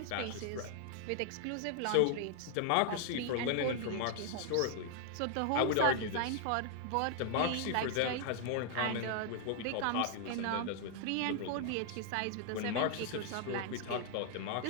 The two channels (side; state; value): both; different; correlation 0.00